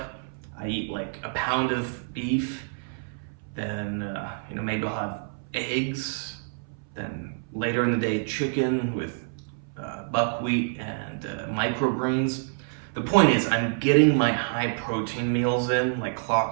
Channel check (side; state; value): left; silent; 60 dB below the other